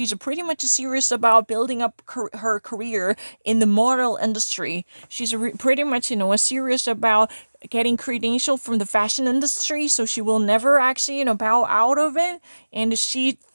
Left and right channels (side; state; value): both; inverted; correlation -1.00